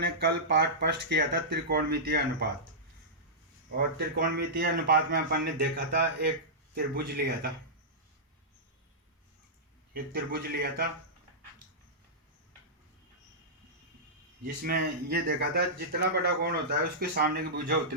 कल पाठ फर्स्ट किया था त्रिकोणमितीय अनुपात। और त्रिकोणमितीय अनुपात में अपन ने देखा था एक त्रिभुज लिया था। जिसमें ये देखा था जितना बड़ा कोण होता है उसके सामने की भुजा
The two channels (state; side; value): normal; both; correlation -0.14